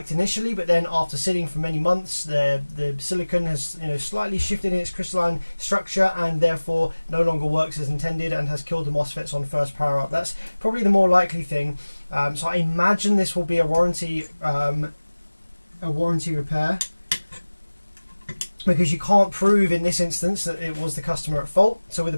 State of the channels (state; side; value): inverted; both; correlation -1.00